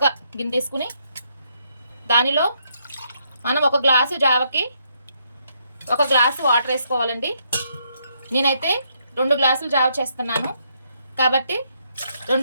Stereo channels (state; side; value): inverted; both; correlation -0.75